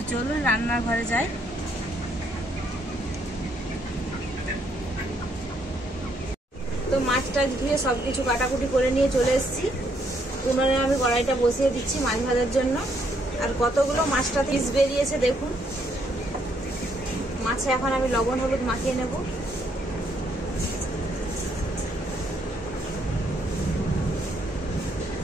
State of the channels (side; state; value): both; normal; correlation 0.72